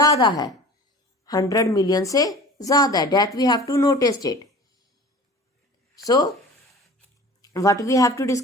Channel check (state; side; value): normal; both; correlation 0.41